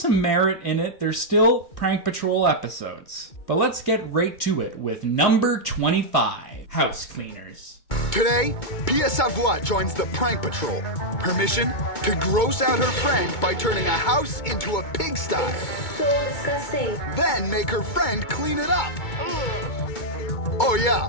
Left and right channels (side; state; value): right; late; 2.2 ms